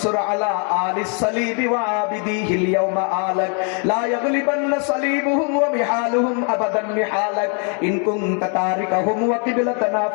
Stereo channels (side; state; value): right; quieter; 39.7 dB